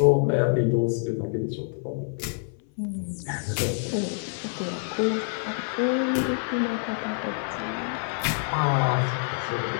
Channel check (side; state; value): right; silent; 61 dB below the other